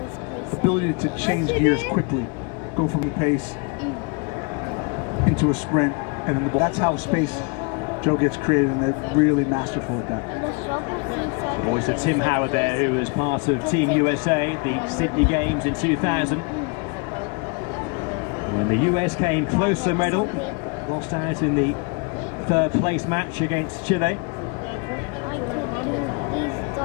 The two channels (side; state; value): right; quieter; 32.7 dB